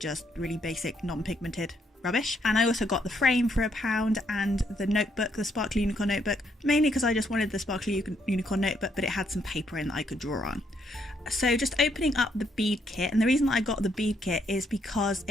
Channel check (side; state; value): both; normal; correlation 0.73